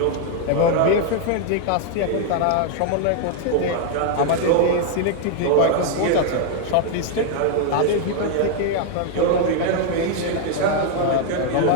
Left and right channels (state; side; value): different; both; correlation 0.00